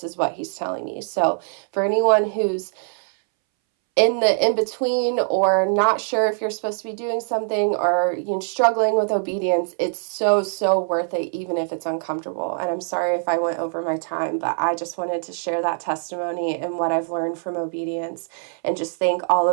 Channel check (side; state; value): left; silent; 63 dB below the other